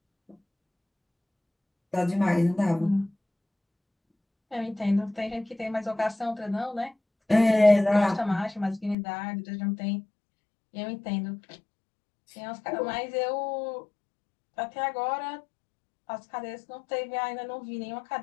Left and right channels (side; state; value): right; drops out; at 9.0 s